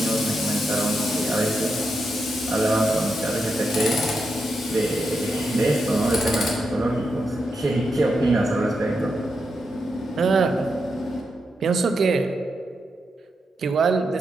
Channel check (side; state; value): both; normal; correlation 0.85